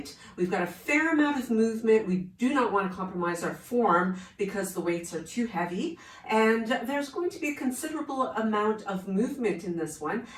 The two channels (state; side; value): identical; both; correlation 1.00